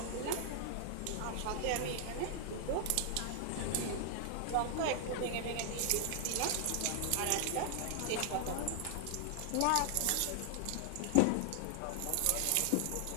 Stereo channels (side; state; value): both; different; correlation 0.00